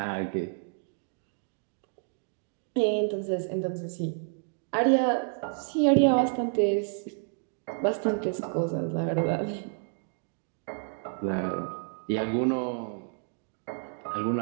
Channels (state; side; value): silent; left; 58 dB below the other